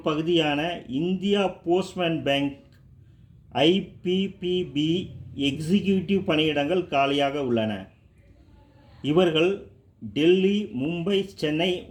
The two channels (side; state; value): both; identical; correlation 1.00